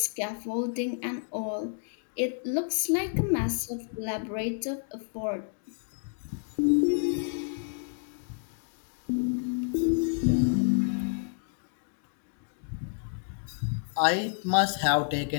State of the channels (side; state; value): right; silent; 58 dB below the other